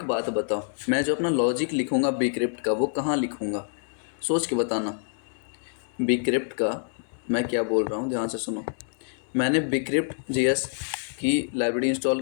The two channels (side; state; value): right; silent; 57 dB below the other